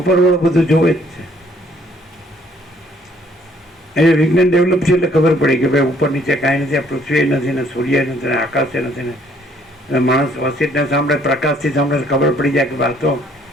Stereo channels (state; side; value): normal; both; correlation 0.63